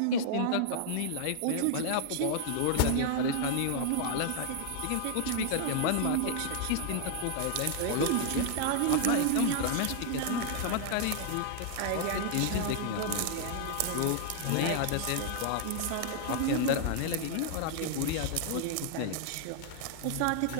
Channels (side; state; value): both; different; correlation -0.01